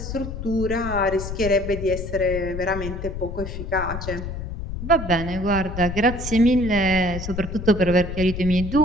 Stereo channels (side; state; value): left; noise; rumble, 7 dB below the sound